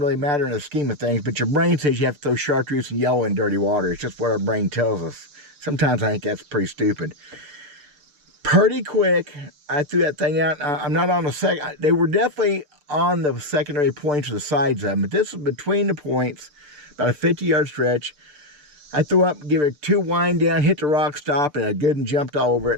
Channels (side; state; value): left; late; 6.8 ms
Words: matter in the scheme of things, but your brain says you have to throw chartreuse and yellow in dirty water. It's just what our brain tells us. Sometimes I think that's pretty stupid. Pretty quick, I threw that thing out. I'm not on the second. They were definitely on the secondary points or the sides of them, but this was between the points, about a 50-yard stretch. I threw up, give it 2 wind down, hit the rock, stop, and I good and jumped all over it.